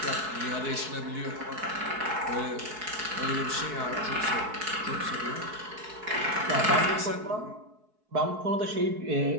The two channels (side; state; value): left; late; 4.6 ms